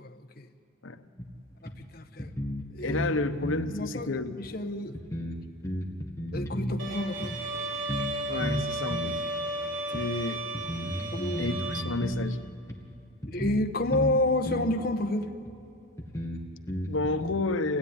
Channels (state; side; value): normal; both; correlation 0.31